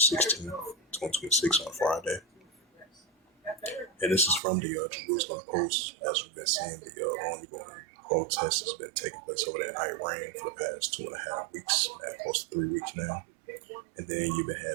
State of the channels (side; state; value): left; drops out; at 4.4 s